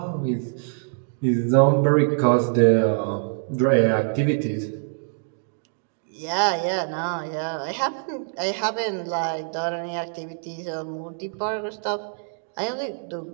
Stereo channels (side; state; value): left; silent; digital silence